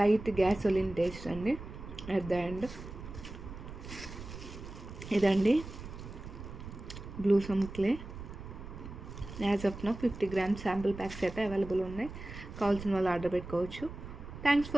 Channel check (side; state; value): right; noise; rumble, 12 dB below the sound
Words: గ్యాసోలిన్ టేస్ట్ అండి అట్ ద ఎండ్. ఇదండి blue some clay. As of now 50 grams sample packs అయితే అవైలబుల్ ఉన్నాయి. కావాల్సిన వాళ్ళు ఆర్డర్ పెట్టుకోవచ్చు. Thanks